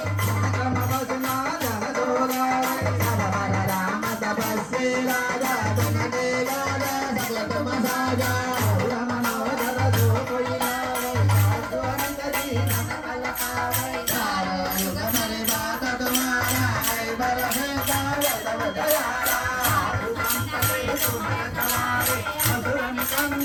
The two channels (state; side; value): identical; both; correlation 1.00